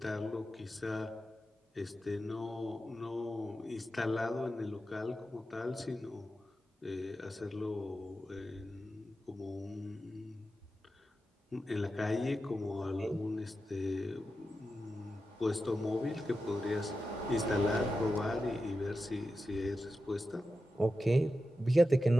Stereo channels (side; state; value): both; normal; correlation 0.91